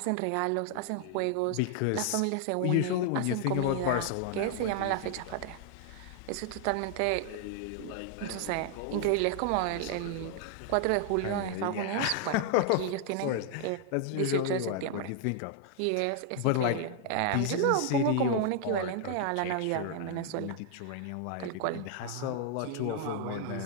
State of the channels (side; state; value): both; different; correlation 0.00